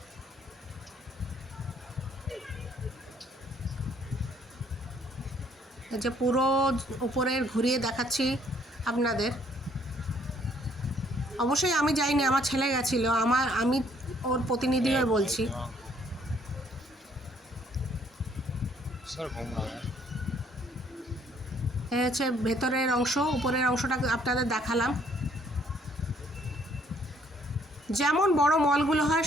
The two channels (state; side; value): normal; both; correlation 0.64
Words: এই যে পুরো উপরের ঘুরিয়ে দেখাচ্ছি আপনাদের। অবশ্যই আমি যাইনি, আমার ছেলে গেছিল, আমি ওর প্রতিনিধি হয়ে বলছি। এই হচ্ছে ভেতরের অংশ। উপরের অংশটা আপনাদের দেখালাম। যেমন বড় মলগুলো হয়